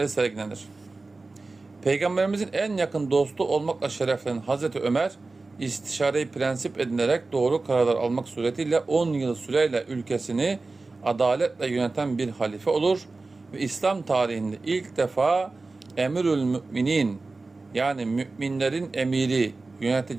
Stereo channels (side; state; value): left; quieter; 3.6 dB